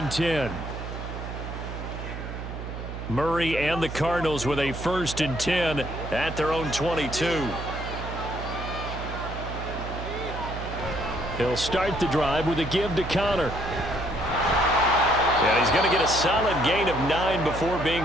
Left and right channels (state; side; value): noise; right; hum, 8 dB below the sound